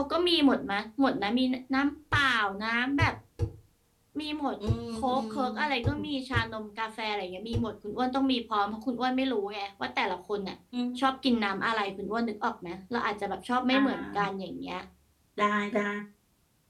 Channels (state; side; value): identical; both; correlation 1.00